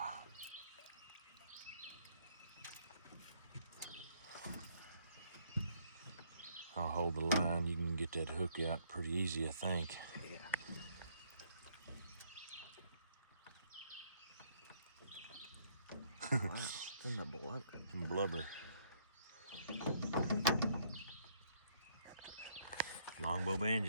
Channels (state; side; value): inverted; both; correlation -0.67